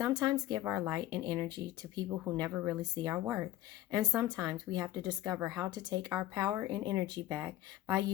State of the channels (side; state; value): right; quieter; 14.3 dB